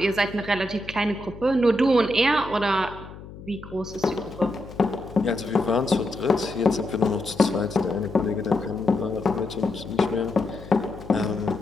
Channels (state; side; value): noise; left; hum, 15 dB below the sound